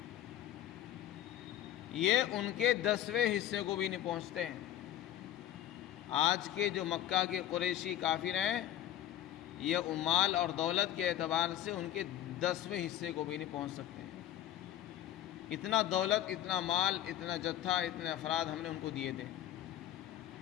یہ ان کے 10ویں حصے کو بھی نہیں پہنچتے ہیں۔ آج کے جو مکہ کے قریشی کافر ہیں یہ مال اور دولت کے اعتبار سے ان کے 10ویں حصے کو بھی نہیں پہنچ سکتے ہیں۔ اتنا دولت، اتنا مال، اتنا جتھا، اتنے افراد ہم نے ان کو دیے تھے۔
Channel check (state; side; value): quieter; right; 12.2 dB